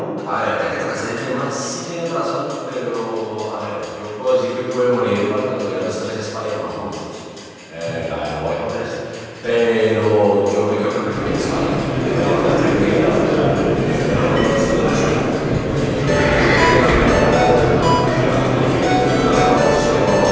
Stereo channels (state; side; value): identical; both; correlation 1.00